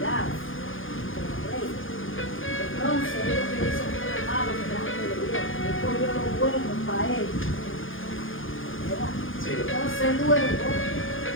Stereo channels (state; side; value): late; right; 0.58 ms